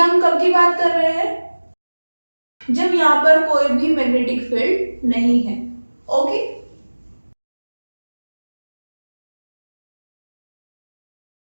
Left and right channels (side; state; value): both; inverted; correlation -1.00